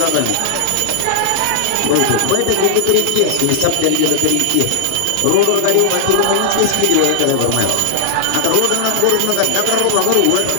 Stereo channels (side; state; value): both; different; correlation 0.00